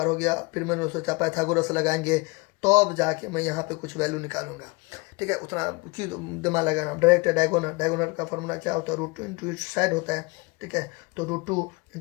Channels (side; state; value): right; quieter; 26.2 dB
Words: हो गया। फिर मैंने सोचा पाइथागोरस लगाएंगे तो अब जाके मैं यहाँ पे कुछ वैल्यू निकालूंगा, ठीक है। उतना की दिमाग लगाना, डायरेक्ट डायगोनल का फॉर्मूला क्या होता है, √2 इंटू साइड होता है, ठीक है। तो √2